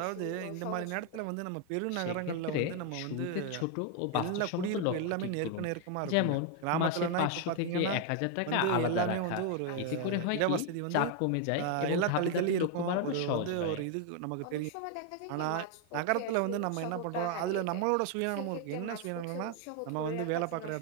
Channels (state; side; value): different; both; correlation 0.01